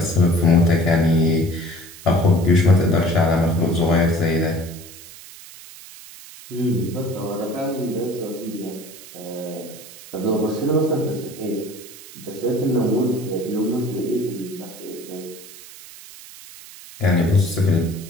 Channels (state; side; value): noise; right; hiss, 17 dB below the sound